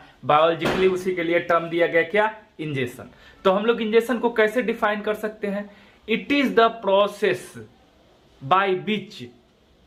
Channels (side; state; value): both; identical; correlation 1.00